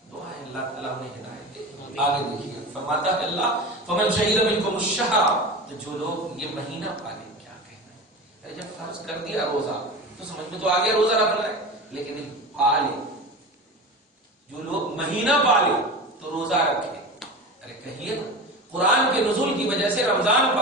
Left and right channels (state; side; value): normal; both; correlation 0.29